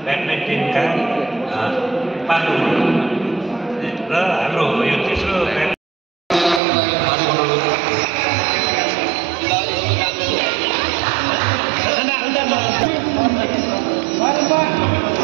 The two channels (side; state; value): left; drops out; at 6.6 s